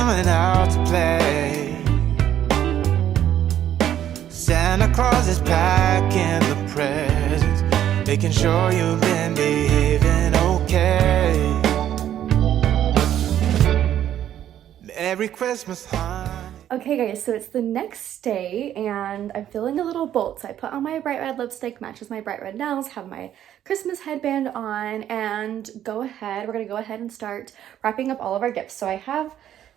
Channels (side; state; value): left; quieter; 11.0 dB